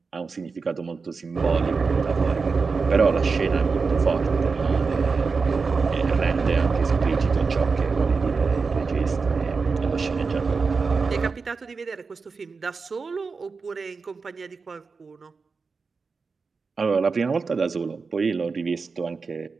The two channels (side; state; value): left; quieter; 4.7 dB